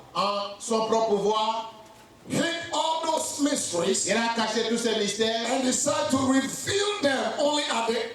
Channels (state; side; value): identical; both; correlation 1.00